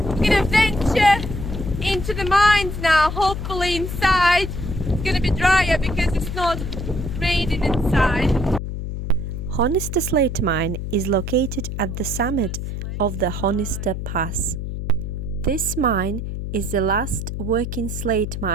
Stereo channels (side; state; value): left; noise; hum, 5 dB below the sound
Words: gonna venture into the mines now. Hopefully inside it's gonna be drier because it's not raining inside. Honister Slate Mine is located at the summit of the Honister Pass. This mine is the last working slate